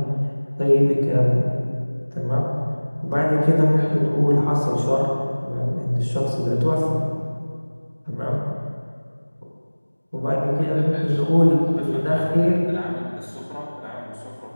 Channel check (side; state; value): both; inverted; correlation -1.00